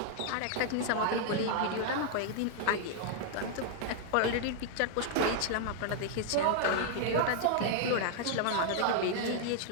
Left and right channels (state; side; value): different; both; correlation 0.00